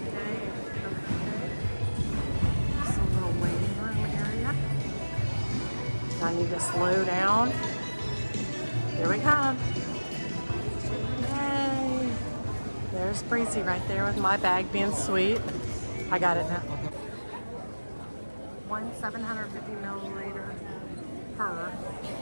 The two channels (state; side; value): inverted; both; correlation -1.00